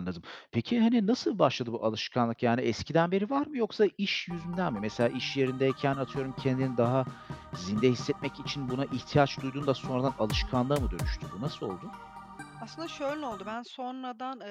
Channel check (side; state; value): both; identical; correlation 1.00